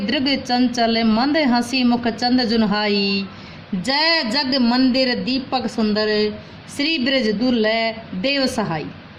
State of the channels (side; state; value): both; identical; correlation 1.00